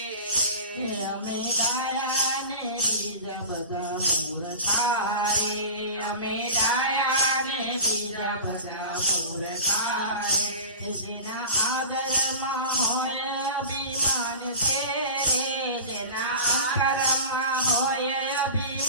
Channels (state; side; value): inverted; both; correlation -0.35